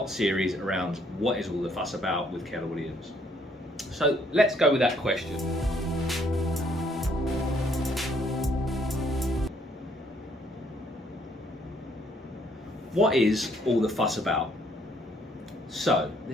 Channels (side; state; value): both; normal; correlation 0.67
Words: series around what is all the fuss about with Keller Williams. So let's go with that question. What is all the fuss about? So,